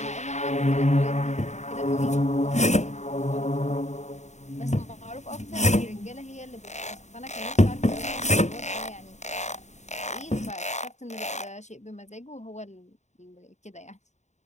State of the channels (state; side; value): late; right; 0.34 ms